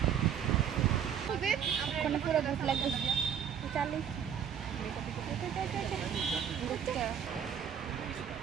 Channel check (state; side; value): quieter; left; 8.4 dB